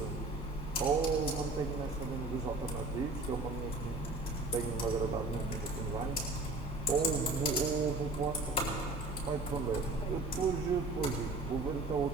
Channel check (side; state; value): left; quieter; 3.1 dB